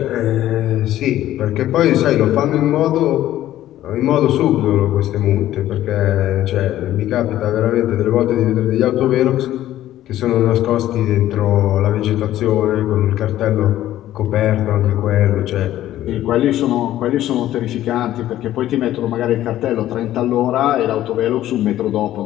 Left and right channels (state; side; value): quieter; right; 13.4 dB